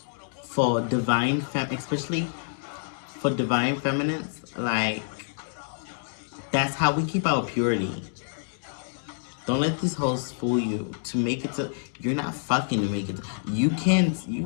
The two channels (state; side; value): silent; right; 60 dB below the other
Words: for especially for divine feminines, like, that's how we keep our purity. Don't let these hoes fool you. To make it to, you're not fucking to make it. You